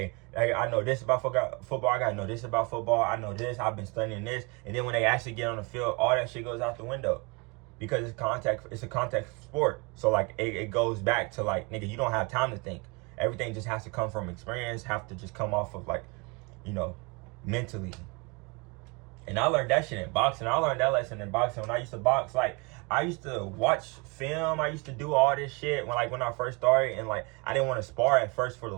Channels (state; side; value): quieter; left; 29.4 dB